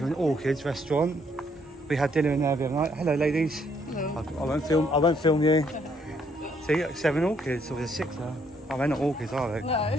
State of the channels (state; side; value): normal; both; correlation 0.69